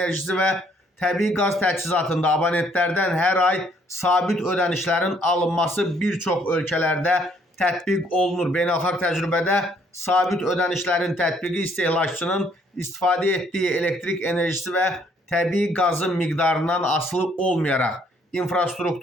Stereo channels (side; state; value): both; normal; correlation 0.65